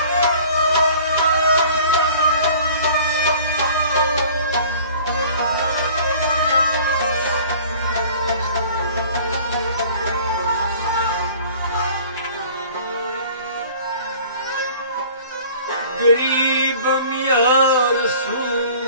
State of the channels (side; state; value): both; inverted; correlation -0.48